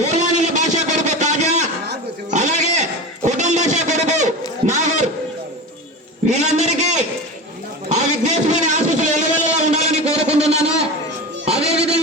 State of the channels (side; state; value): both; normal; correlation 0.27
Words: భాష కొడుకు తాజా, అలాగే కుటుంబ భాష కొడుకు నాగూర్, వీళ్ళందరికీ ఆ విఘ్నేశ్వరుని ఆశీస్సులు ఎల్లవెల్లలా ఉండాలని కోరుకుంటున్నాను.